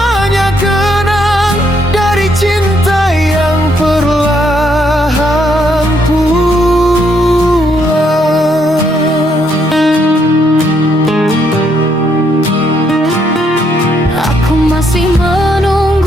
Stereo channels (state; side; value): normal; both; correlation 0.73